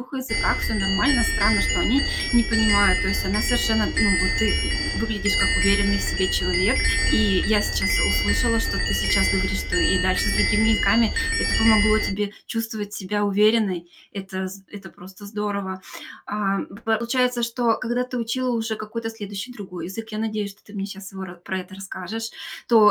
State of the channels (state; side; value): identical; both; correlation 1.00